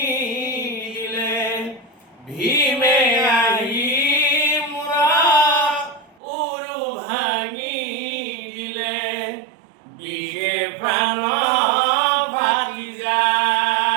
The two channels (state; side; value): drops out; left; at 6.2 s